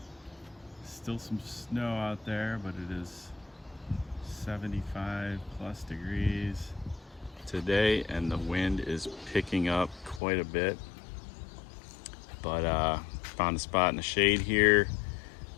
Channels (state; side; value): drops out; right; at 10.2 s